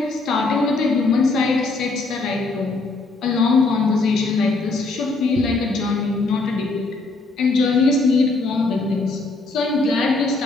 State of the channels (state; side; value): quieter; right; 3.5 dB